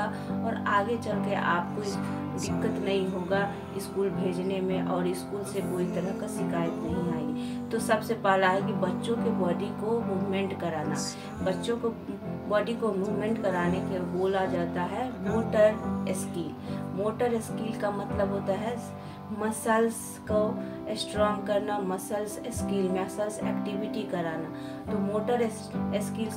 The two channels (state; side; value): identical; both; correlation 1.00